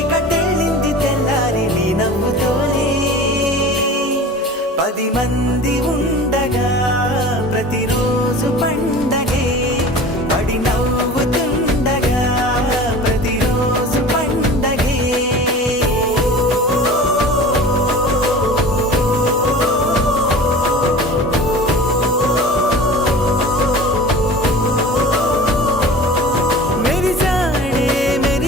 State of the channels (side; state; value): both; normal; correlation 0.39